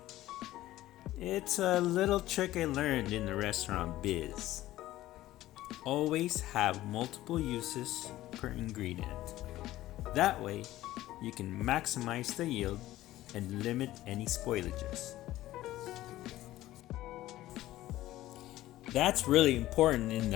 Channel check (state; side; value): quieter; right; 15.4 dB